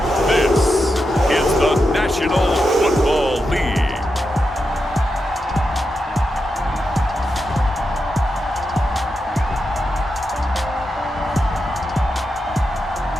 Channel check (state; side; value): normal; both; correlation 0.87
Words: this is the National Football League.